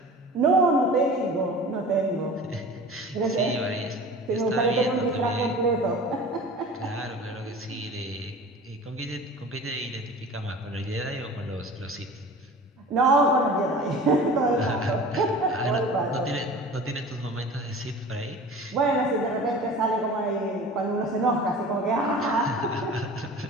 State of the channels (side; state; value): both; normal; correlation 0.39